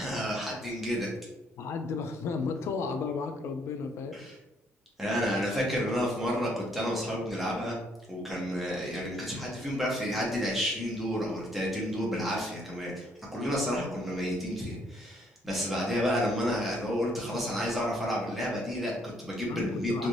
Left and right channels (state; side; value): normal; both; correlation 0.68